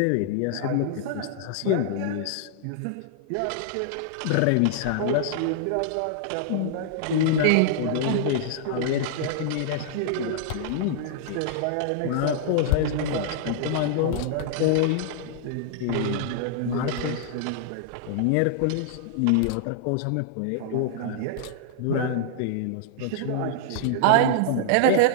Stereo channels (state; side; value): different; both; correlation -0.01